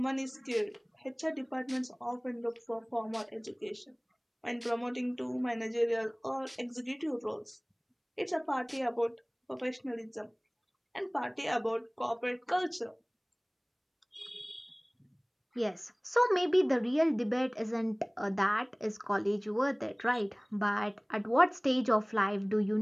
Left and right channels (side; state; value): both; identical; correlation 1.00